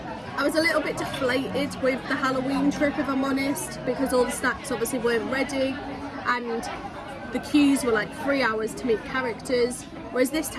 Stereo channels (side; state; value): both; identical; correlation 1.00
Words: was a little bit deflated with the Halloween trip, if I'm honest, because all the snacks obviously weren't ready and the queues were like 3 hours to meet characters, whereas this